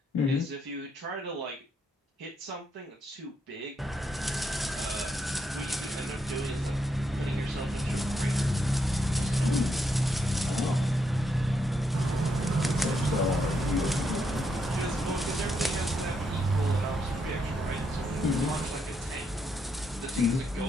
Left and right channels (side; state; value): both; normal; correlation 0.79